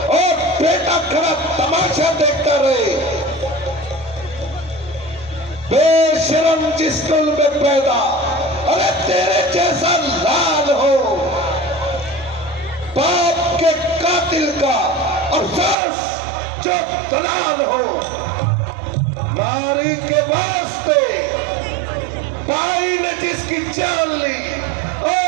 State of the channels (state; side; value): drops out; left; at 15.8 s